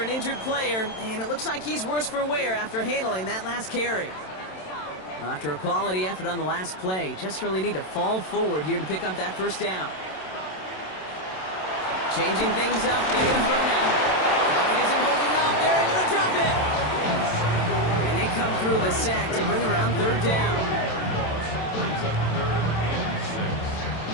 injured player, and it looks like he's worse for wear after handling that last carry. Well, after a quality effort on the last play, just really need to fall forward here to pick up that 1st down. Changing things up, they're going to throw now. It isn't holding up, they're able to drop it. And they come through the sack to bring around 3rd down. Brings up 3rd and 6.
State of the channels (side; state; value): right; late; 27 ms